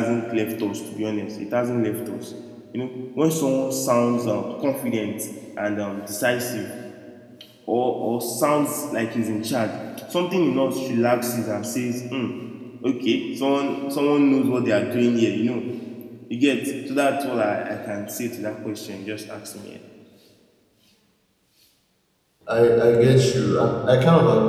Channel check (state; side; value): identical; both; correlation 1.00